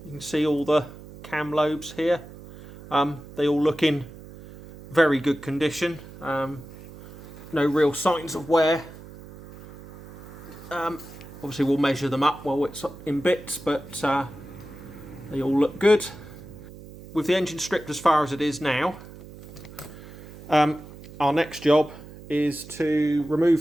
you can see all the cam lobes here. They all look in very good condition. No real signs of wear. Obviously we'll measure them up while it's in bits, but they all look good. With the engine stripped as far as it is now, our next job is to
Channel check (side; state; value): right; noise; hum, 17 dB below the sound